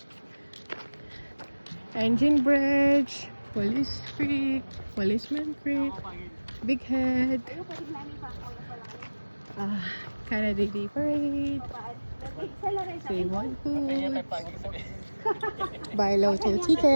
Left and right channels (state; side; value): inverted; both; correlation -1.00